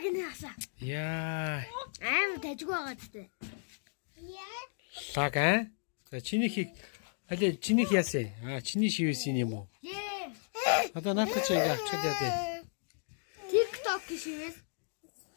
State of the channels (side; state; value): right; silent; digital silence